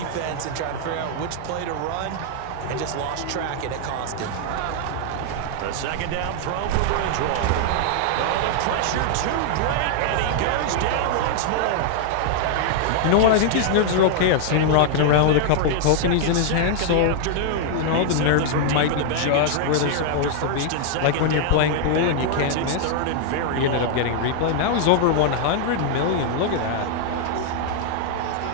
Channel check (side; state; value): both; different; correlation 0.00